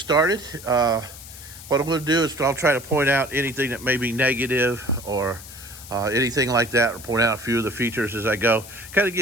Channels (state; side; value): noise; left; hiss, 16 dB below the sound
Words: What I'm going to do is I'll try to point out anything that may be negative or anything like that, or point out a few of the features as I go. Kind of